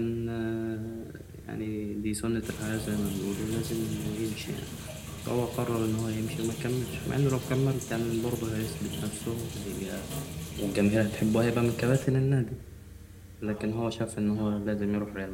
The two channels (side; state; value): both; identical; correlation 1.00